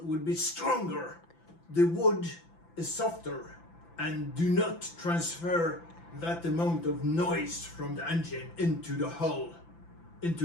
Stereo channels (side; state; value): right; late; 5.9 ms